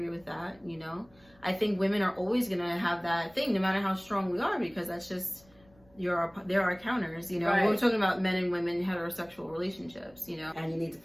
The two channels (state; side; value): noise; left; rumble, 29 dB below the sound